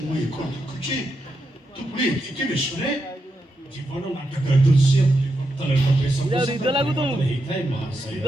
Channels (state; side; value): normal; both; correlation 0.84